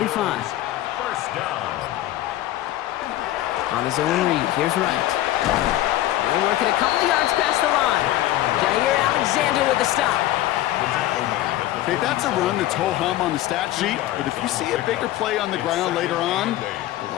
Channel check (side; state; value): right; quieter; 14.6 dB